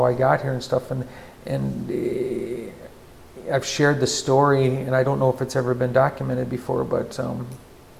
I got here and stuff, and I've shared the story, and I don't know if it's ever been documented before, but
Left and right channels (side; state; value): both; identical; correlation 1.00